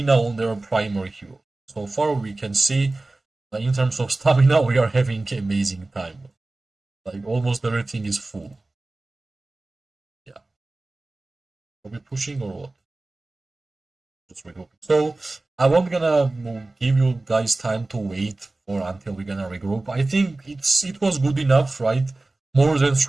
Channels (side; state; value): left; quieter; 3.0 dB